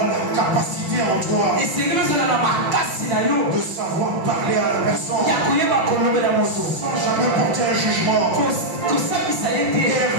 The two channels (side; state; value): left; late; 5.6 ms